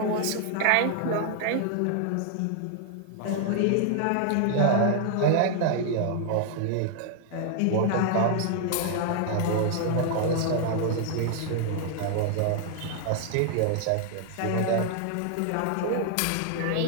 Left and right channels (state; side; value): different; both; correlation 0.00